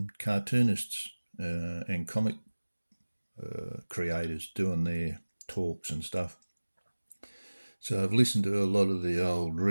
cartoonists and comic creators doing their talks and stuff. So I've listened to a lot of the old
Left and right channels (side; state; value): both; inverted; correlation -1.00